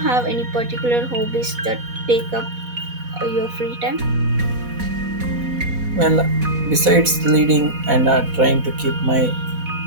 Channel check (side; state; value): left; late; 4.1 ms